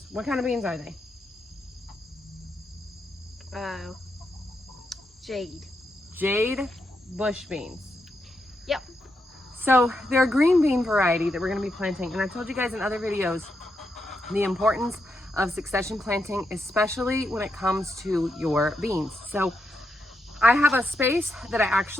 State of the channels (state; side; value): normal; both; correlation 0.83